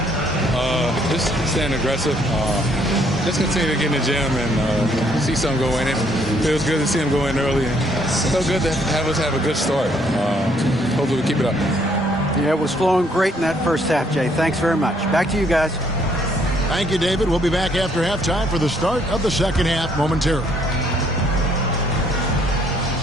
Just staying aggressive. Just continue to get in the gym and see something go in. It feels good to see him go in early. So good to have us have a good start. Hopefully we keep it up. Yeah, it was flowing great in that first half, Jay. Thanks very much. Back to you guys. Thank you, David. We'll be back after halftime for the start of the second half momentarily.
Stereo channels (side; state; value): both; normal; correlation 0.67